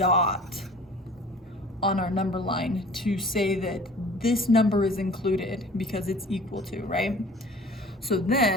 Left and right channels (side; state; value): both; normal; correlation 0.46